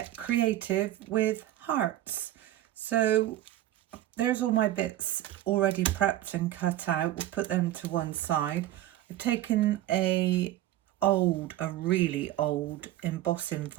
creative with hearts. So there's all my bits already prepped and cut out. We'll put them to one side. I've taken a really old embossing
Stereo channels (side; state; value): left; quieter; 14.0 dB